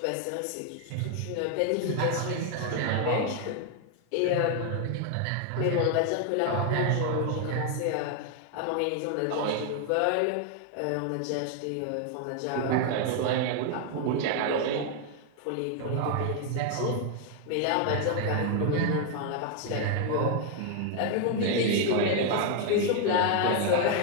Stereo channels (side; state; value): both; different; correlation 0.00